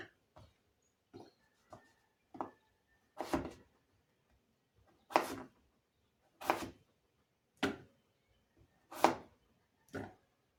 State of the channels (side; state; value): both; identical; correlation 1.00